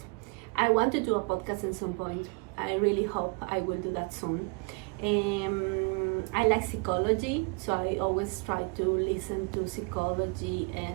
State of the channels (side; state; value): left; quieter; 32.3 dB